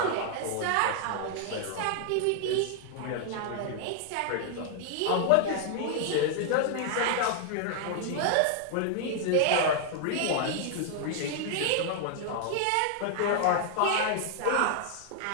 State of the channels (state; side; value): different; both; correlation 0.00